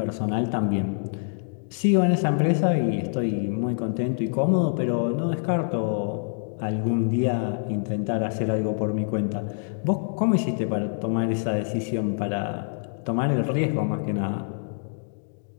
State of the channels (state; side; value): silent; right; digital silence